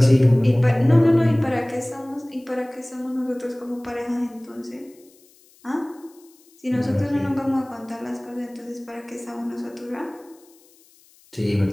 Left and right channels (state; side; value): noise; left; hiss, 29 dB below the sound